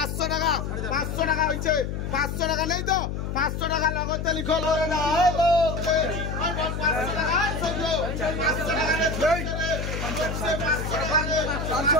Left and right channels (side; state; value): left; noise; hum, 4 dB below the sound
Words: টাকা 500 টাকা হয়েছে 500 টাকা নেই তো 500 টাকা লগতে লিখো লয় না 500 টাকা 500 টাকা নেই